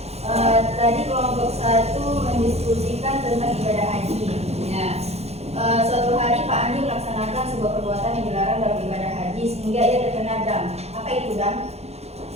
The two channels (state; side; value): late; left; 0.31 ms